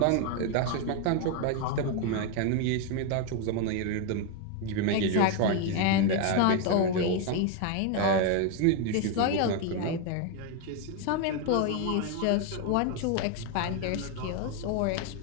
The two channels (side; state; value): both; different; correlation 0.01